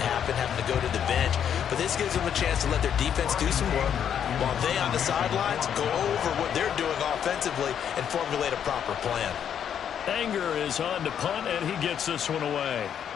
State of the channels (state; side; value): quieter; right; 8.8 dB